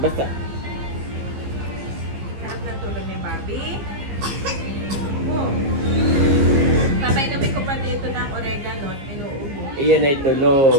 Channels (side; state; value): left; late; 15 ms